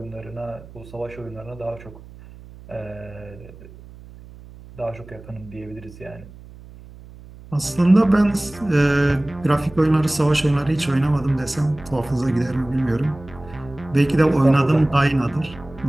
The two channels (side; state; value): right; noise; hum, 19 dB below the sound